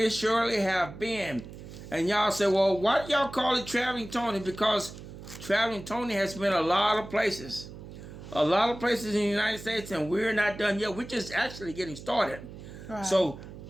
Shirley have been. And y'all say, well, why do y'all call it Traveling Tony? Because Traveling Tony has been a lot of places. A lot of places in the United States, and we're not done yet. We're just actually getting started. Right. So,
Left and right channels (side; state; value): right; noise; hum, 14 dB below the sound